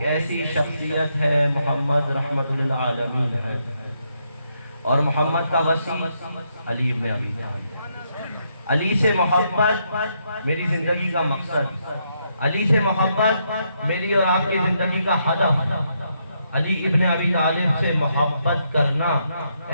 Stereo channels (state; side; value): inverted; both; correlation -0.77